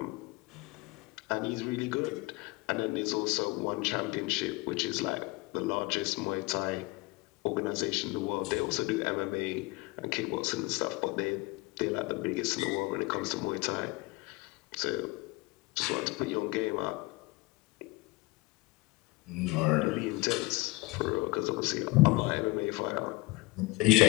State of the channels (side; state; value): right; quieter; 23.4 dB